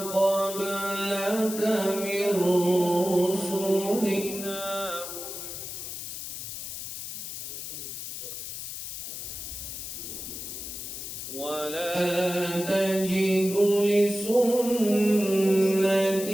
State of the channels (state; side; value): noise; left; hiss, 8 dB below the sound